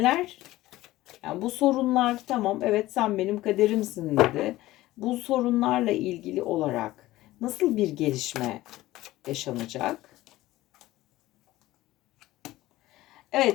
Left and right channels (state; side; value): quieter; right; 16.8 dB